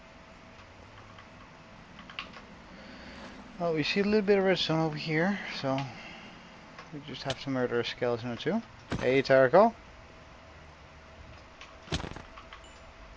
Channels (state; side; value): identical; both; correlation 1.00